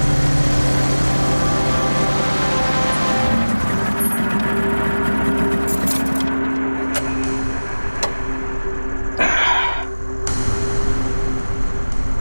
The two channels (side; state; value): both; inverted; correlation -1.00